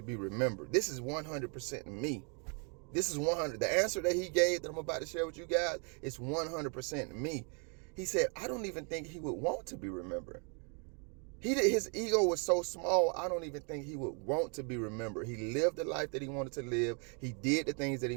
be remembered? This is 100% me. This is 100. The answer that he gave that I'm about to share with you guys is 100% me. He said, I don't even think he would want to be remembered. His ego was so small, I don't even think he would want to be remembered. He lived the life that he wanted to live. He did the things that he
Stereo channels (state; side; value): quieter; left; 37.6 dB